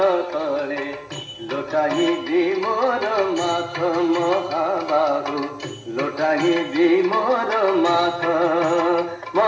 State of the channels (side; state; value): both; identical; correlation 1.00